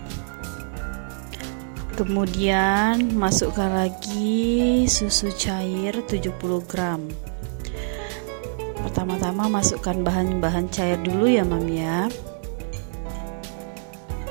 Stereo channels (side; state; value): left; silent; digital silence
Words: Kemudian masukkan lagi susu cair 70 gram. Pertama-tama masukkan bahan-bahan cair dulu ya, Mam ya.